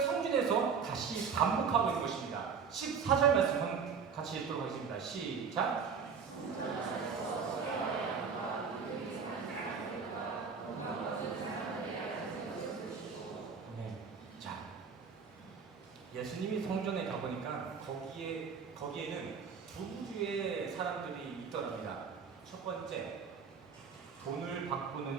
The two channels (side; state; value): left; quieter; 6.0 dB